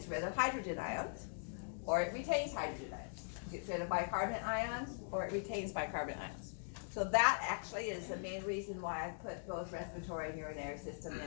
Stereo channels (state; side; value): silent; right; digital silence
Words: rid of hydrogen ions, or it retains hydrogen ions. It gets rid of bicarbonate ions, or it retains bicarbonate ions. So that actually is the main reason why I put both respiratory and urinary system